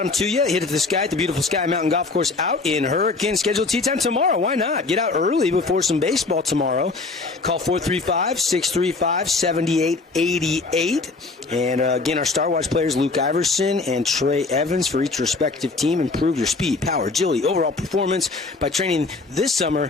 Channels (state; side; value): quieter; right; 3.8 dB